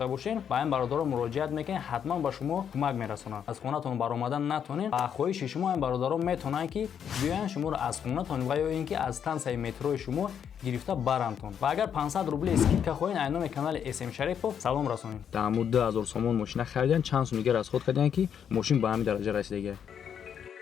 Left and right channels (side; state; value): right; quieter; 8.3 dB